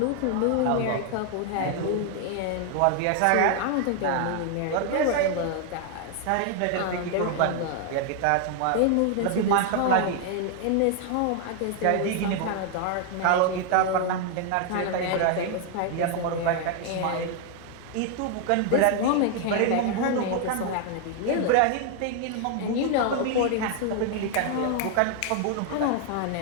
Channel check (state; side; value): different; both; correlation 0.00